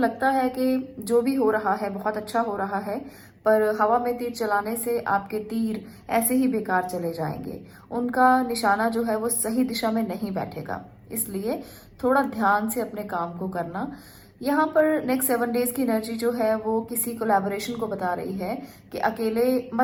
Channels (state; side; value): identical; both; correlation 1.00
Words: है कि जो भी हो रहा है बहुत अच्छा हो रहा है, पर हवा में तीर चलाने से आपके तीर ऐसे ही बेकार चले जाएंगे। उनका निशाना जो है वो सही दिशा में नहीं बैठेगा। इसलिए थोड़ा ध्यान से अपने काम को करना। यहाँ पर नेक्स्ट 7 डेज की एनर्जी जो है वो किसी कोलैबोरेशन को बता रही है कि अकेले